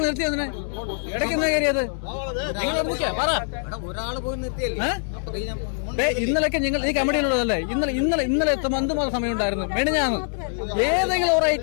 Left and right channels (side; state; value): right; silent; 63 dB below the other